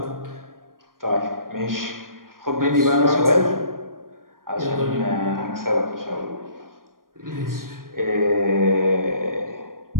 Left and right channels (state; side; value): late; left; 0.91 ms